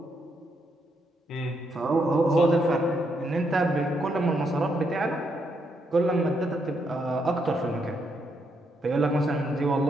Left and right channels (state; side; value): normal; both; correlation 0.78